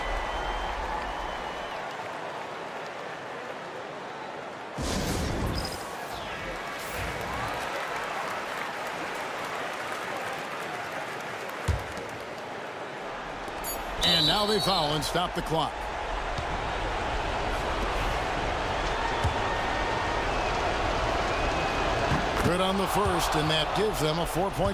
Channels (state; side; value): identical; both; correlation 1.00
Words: And now they foul and stop the clock. Good on the first, and that gives them a